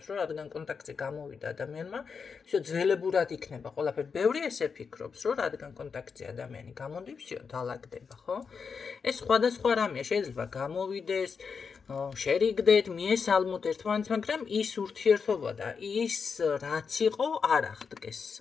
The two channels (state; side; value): quieter; right; 5.7 dB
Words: რომ რადგან კონტაქტზე გამოვიდა ადამიანმა, всё ძველებურად იქნება ყველაფერი. ბევრი ესე ფიქრობს, რომ რადგან კონტაქტზე ადამიანი გამოდი, всё დაალაგდება, ხო? ეს სხვადასხვა რამეა, შეიძლება გამოვიდეს, შერიგდეთ, მიესალმოთ ერთმანეთს, მაგრამ ის ურთიერთობა და ის რაც იყო არ აღდგეს.